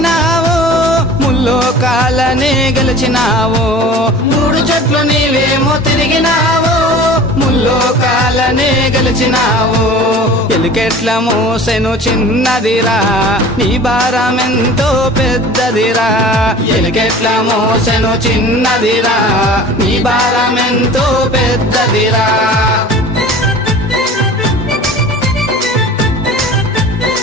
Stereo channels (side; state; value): both; normal; correlation 0.42